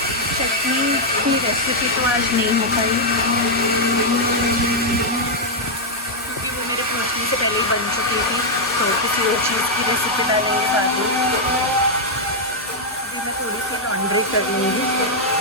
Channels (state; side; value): normal; both; correlation -0.03